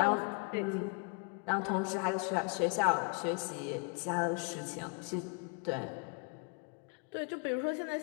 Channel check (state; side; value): quieter; right; 35.9 dB